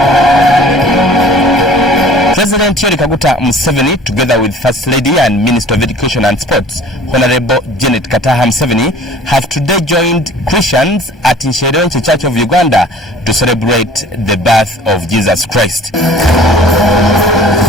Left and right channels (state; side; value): normal; both; correlation 0.48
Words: President Yoweri Museveni, together with First Lady and Minister of Education and Sports, Honorable Janet Kataha Museveni, have today joined Christians at Nshwerenkwe Church of Uganda to celebrate the birth of Jesus Christ.